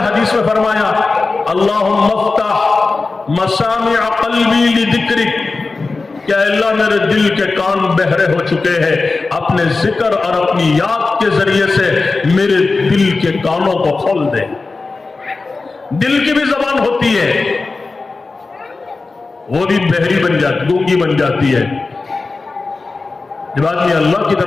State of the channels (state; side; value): quieter; right; 3.8 dB